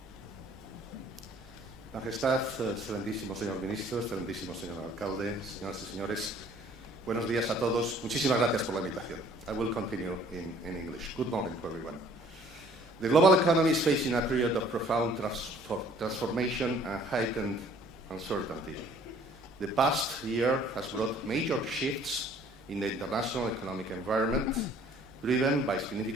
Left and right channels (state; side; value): normal; both; correlation 0.56